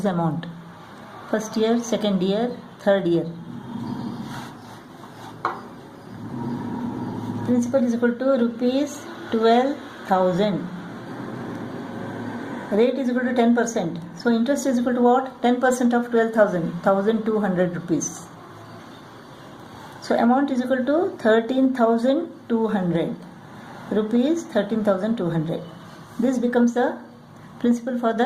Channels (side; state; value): both; identical; correlation 1.00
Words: amount. First year, second year, third year. Principal is equal to rupees 12,000. Rate is equal to 10%. So interest is equal to what? 10% of 12,000, 1,200 rupees. So amount is equal to 13,200 rupees, 13,200. This becomes the principal for